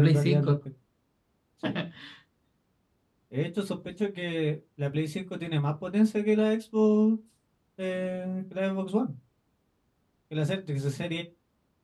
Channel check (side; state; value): both; identical; correlation 1.00